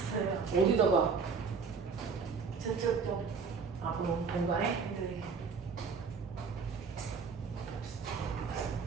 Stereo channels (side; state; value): left; quieter; 5.4 dB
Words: 어디다가? 저쪽 좀. 아, 그럼 공간에? 네.